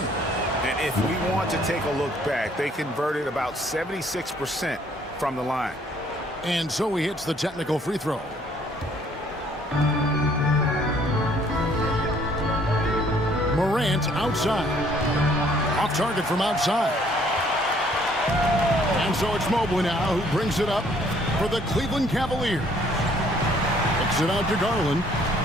And if we want to take a look back, they converted about 76% from the line. And so he hits the technical free throw. Morant outside. Off target from outside. And so it's Mobley now who brings it up for the Cleveland Cavaliers. Kicks it out to Garland.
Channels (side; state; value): both; normal; correlation 0.62